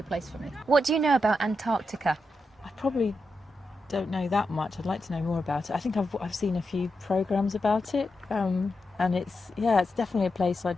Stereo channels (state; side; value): normal; both; correlation 0.87